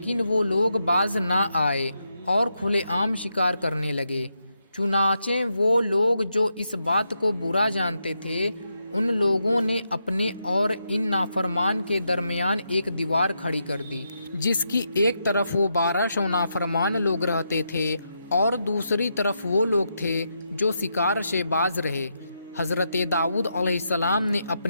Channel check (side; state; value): both; inverted; correlation -0.83